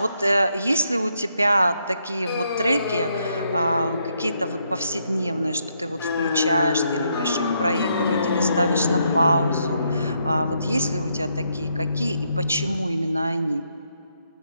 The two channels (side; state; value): both; inverted; correlation -0.76